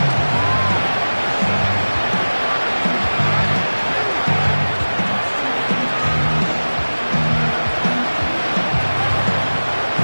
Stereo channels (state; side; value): inverted; both; correlation -1.00